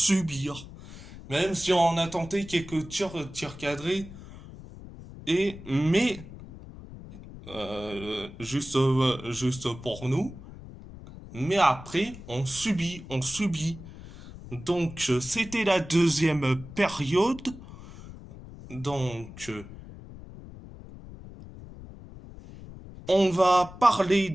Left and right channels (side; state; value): left; noise; rumble, 15 dB below the sound